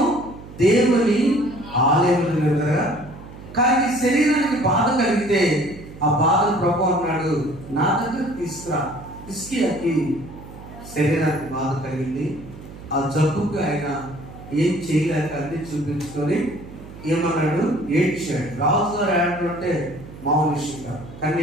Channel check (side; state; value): right; noise; hum, 16 dB below the sound